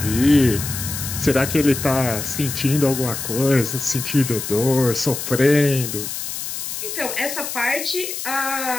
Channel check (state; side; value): noise; left; hiss, 6 dB below the sound